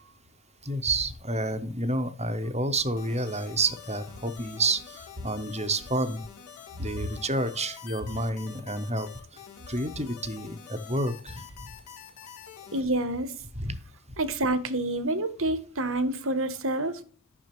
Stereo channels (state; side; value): normal; both; correlation 0.17